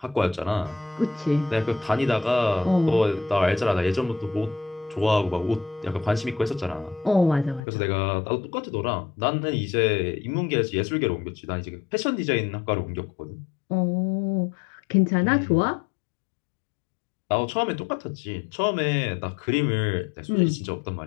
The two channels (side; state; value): right; drops out; at 7.6 s